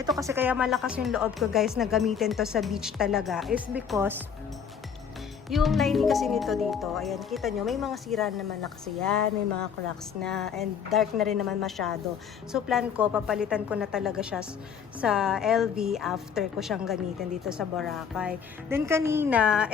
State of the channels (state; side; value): quieter; right; 7.2 dB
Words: kasi kaya malakas yung loob ko guys na gamitin to sa beach talaga. Is because yung lining kasi nito dito, ayan, kita nyo, may mga sira naman na kasi yan, may mga cracks na, and dark na rin naman masyado. So, plan ko, papalitan ko na talaga siya sa LV after ko siyang gamitin dito sa Boracay. Then, kanina,